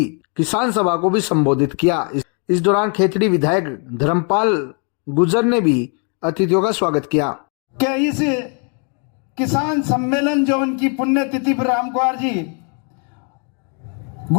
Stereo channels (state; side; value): quieter; right; 38.7 dB